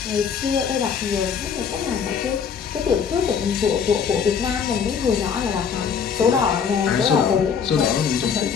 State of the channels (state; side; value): quieter; right; 6.8 dB